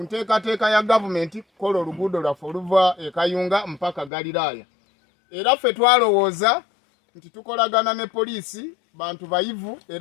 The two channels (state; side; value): drops out; right; at 4.1 s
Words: nteekateeka ya gavumenti kukola oluguudo lwaffe oluva e Kayunga mpaka Galiraaya. Era ffe twalowooza nti tukolagana ne poliisi bantu bayivu